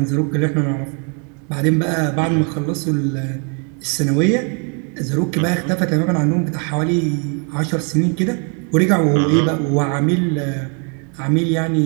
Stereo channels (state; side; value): quieter; left; 38.5 dB